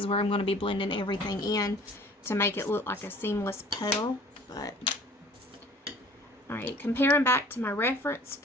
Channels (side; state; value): both; normal; correlation 0.50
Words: where I'm going to be blending everything in to make it look like a seamless petal. But alright, comparing back to my reference